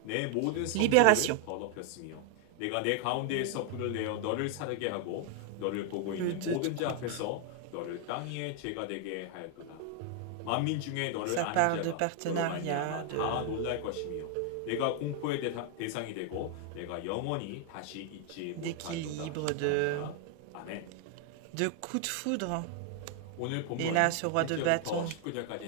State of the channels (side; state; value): both; different; correlation 0.00